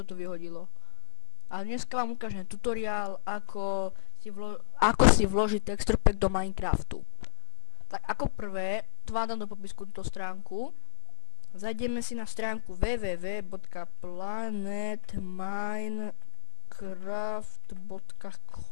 tu vyhodilo. A dneska vám ukážem tutoriál, ako si vložiť texture pack do Minecraftu. Tak ako prvé, tu vám dám do popisku túto stránku. Zajdeme si na stránku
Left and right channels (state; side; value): silent; right; digital silence